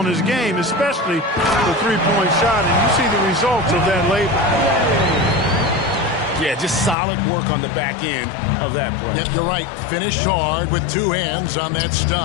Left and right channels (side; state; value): right; drops out; at 7.0 s